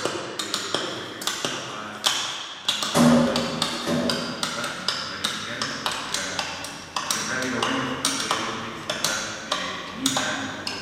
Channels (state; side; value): identical; both; correlation 1.00